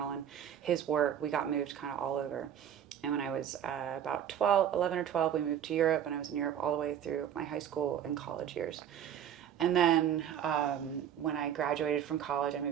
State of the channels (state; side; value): quieter; left; 9.5 dB